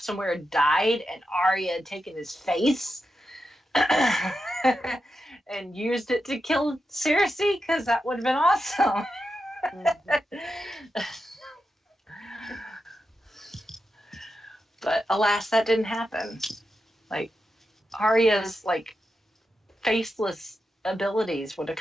somewhere and died, and Arya had taken his face and used it to kill Cersei, because that would have been awesome. But alas, that didn't happen. Arya's faceless abilities would have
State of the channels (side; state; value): both; normal; correlation 0.88